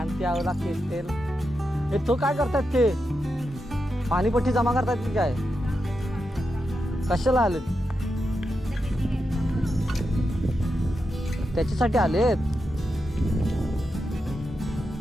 आवला केल. हे तो काय करतात ते पाणीपट्टी जमा करतात की काय, कशाला आले त्याच्यासाठी आलेत.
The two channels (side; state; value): both; normal; correlation 0.87